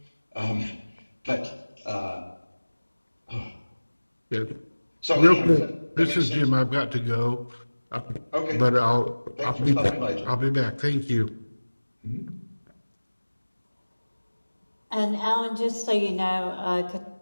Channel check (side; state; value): both; inverted; correlation -1.00